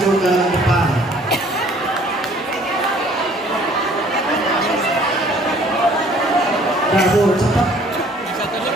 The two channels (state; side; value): normal; both; correlation 0.56